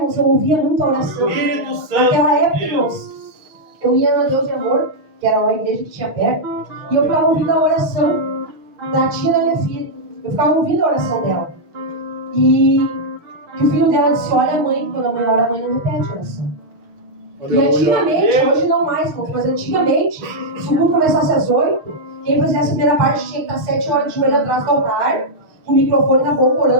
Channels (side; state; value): left; late; 6.4 ms